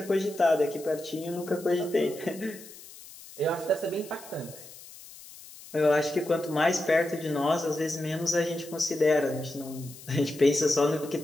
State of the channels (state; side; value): noise; left; hiss, 18 dB below the sound